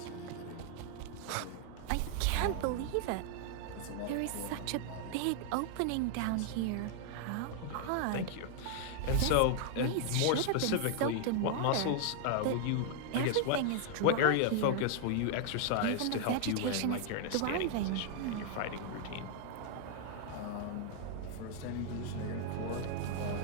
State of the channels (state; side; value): different; both; correlation 0.00